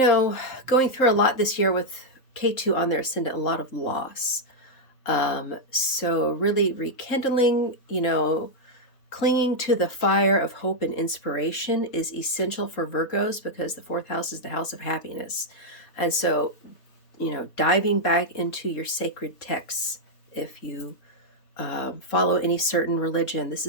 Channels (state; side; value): late; right; 3.8 ms